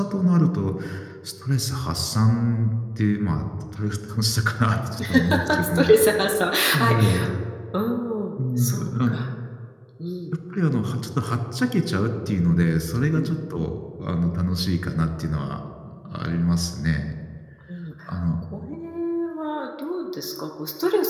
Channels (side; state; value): both; identical; correlation 1.00